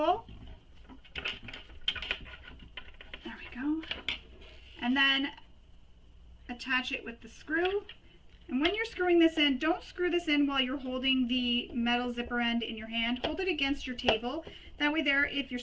There we go. And then attach it with the screw. And when you're screwing this in, don't screw this in while you're holding the metal zipper end in your hand. Hold it against your table. That way there, if your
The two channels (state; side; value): identical; both; correlation 1.00